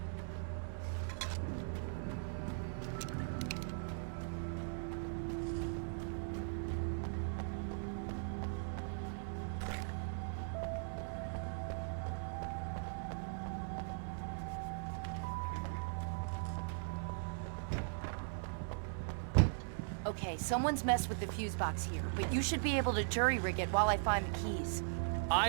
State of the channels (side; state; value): left; silent; 51 dB below the other